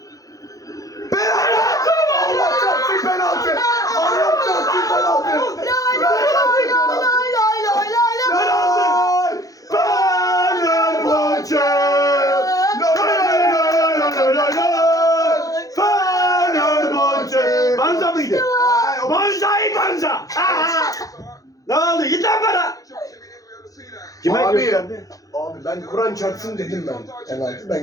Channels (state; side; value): late; right; 0.17 ms